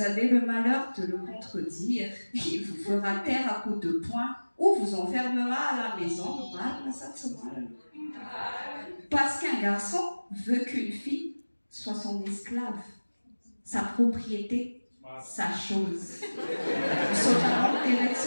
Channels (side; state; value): both; inverted; correlation -1.00